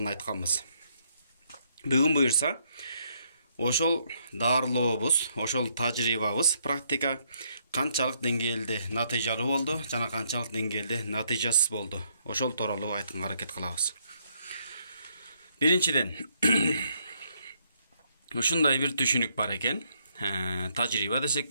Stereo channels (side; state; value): both; inverted; correlation -0.72